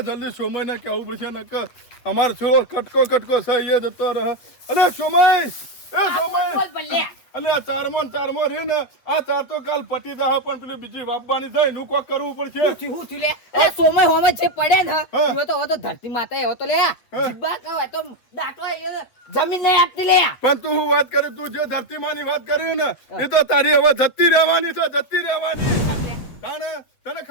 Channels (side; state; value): right; late; 8.4 ms